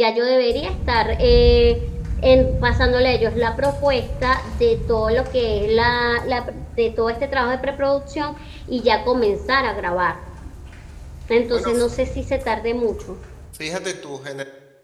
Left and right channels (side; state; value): both; identical; correlation 1.00